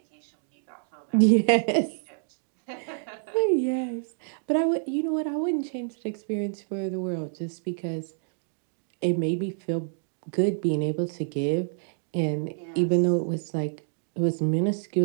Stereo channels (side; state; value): left; silent; digital silence